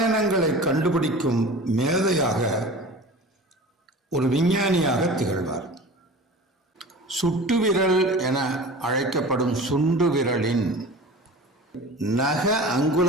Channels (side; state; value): both; normal; correlation 0.37